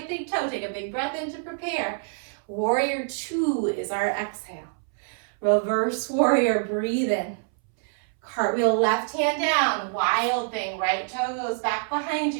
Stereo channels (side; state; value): left; silent; 61 dB below the other